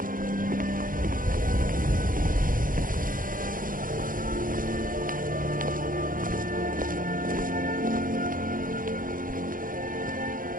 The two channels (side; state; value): left; late; 0.40 ms